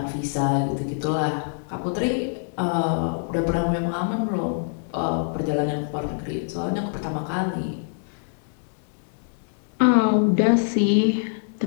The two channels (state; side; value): silent; right; digital silence